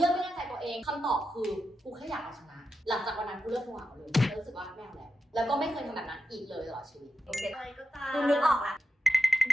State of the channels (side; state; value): both; normal; correlation 0.88